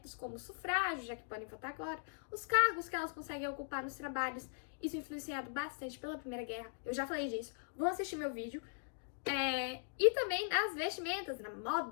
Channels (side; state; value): right; silent; digital silence